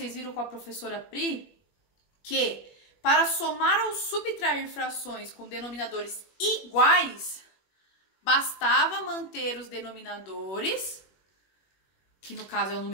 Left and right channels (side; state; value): right; late; 21 ms